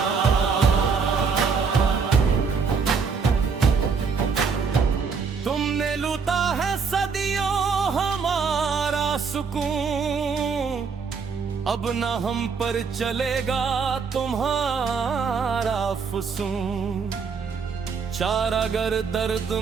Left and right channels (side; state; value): left; quieter; 5.5 dB